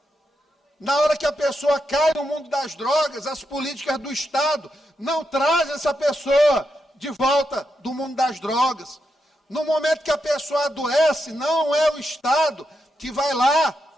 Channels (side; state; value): both; normal; correlation 0.84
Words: Na hora que a pessoa cai no mundo das drogas, as políticas do Estado não trazem essa pessoa de volta do mundo das drogas. No momento que a pessoa adoece, não é o Estado que vai lá